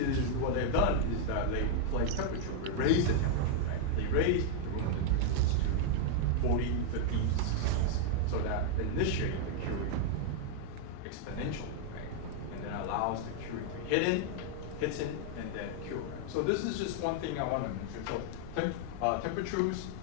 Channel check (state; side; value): different; both; correlation 0.00